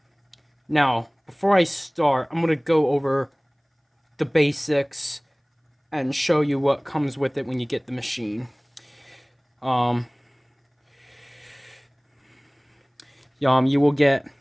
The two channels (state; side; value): identical; both; correlation 1.00